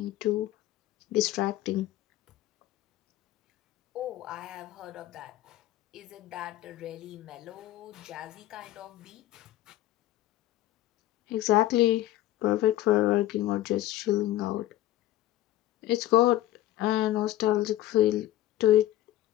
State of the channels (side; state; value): right; quieter; 14.3 dB